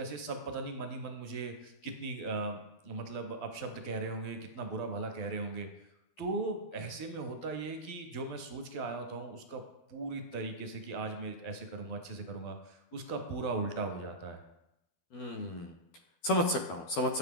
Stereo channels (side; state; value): right; late; 12 ms